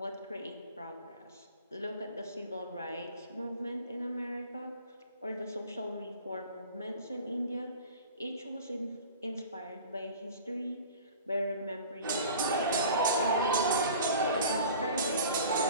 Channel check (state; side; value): inverted; both; correlation -0.42